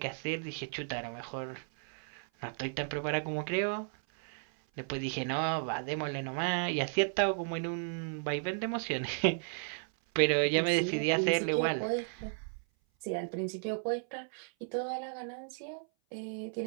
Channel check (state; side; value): silent; left; 55 dB below the other